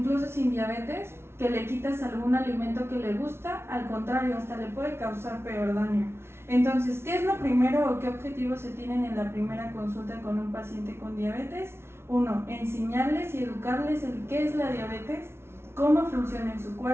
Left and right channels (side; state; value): left; late; 0.12 ms